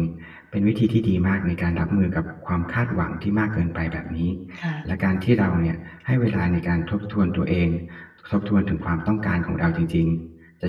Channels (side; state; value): both; identical; correlation 1.00